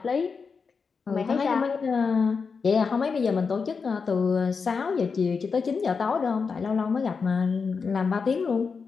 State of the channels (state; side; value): quieter; right; 5.2 dB